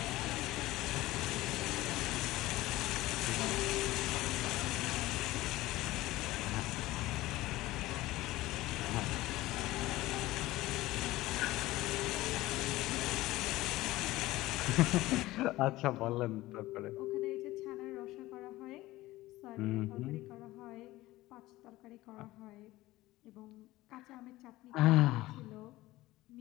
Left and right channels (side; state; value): right; quieter; 17.8 dB